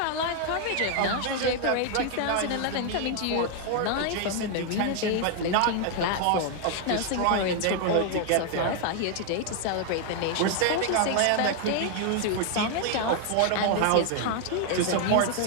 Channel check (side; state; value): both; different; correlation 0.00